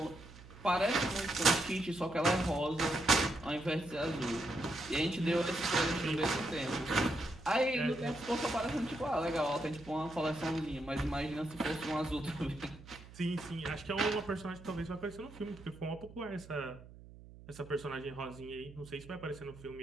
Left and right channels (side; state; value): right; noise; hum, 18 dB below the sound